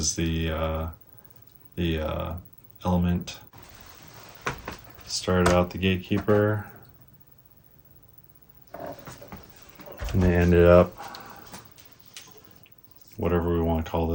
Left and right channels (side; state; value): both; identical; correlation 1.00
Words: the Element. Started out the Gatekeeper, and they ended up whatever we want to call